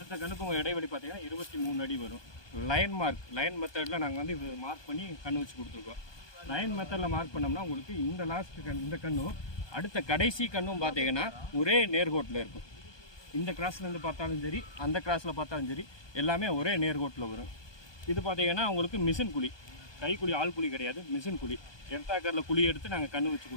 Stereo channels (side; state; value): right; late; 1.2 ms